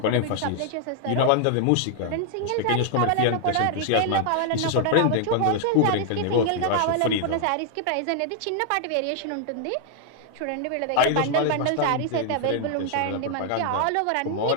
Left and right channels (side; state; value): both; different; correlation 0.00